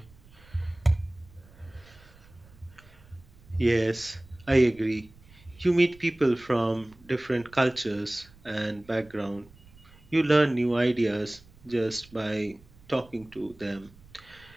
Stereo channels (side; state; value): right; noise; rumble, 25 dB below the sound